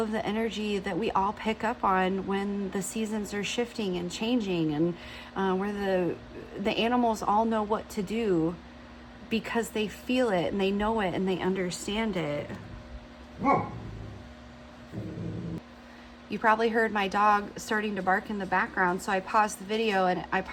the energy that we all pick up on when the seasons are shifting and changing, and where the animals all know what to do because they feel it and they know it and they understand it. You probably heard my dog starting to bark in the background, so I paused the video, and I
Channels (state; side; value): identical; both; correlation 1.00